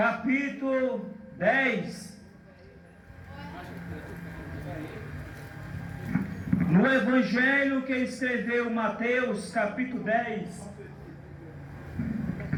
10. No Evangelho que escreveu Mateus, capítulo 10.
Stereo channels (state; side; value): identical; both; correlation 1.00